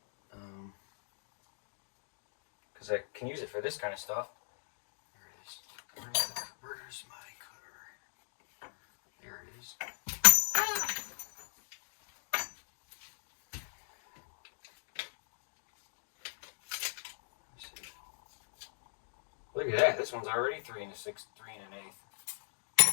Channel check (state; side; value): silent; right; digital silence